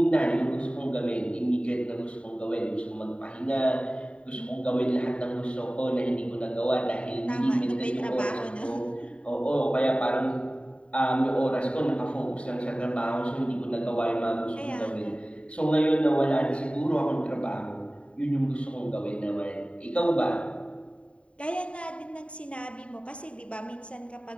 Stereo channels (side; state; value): right; late; 0.061 ms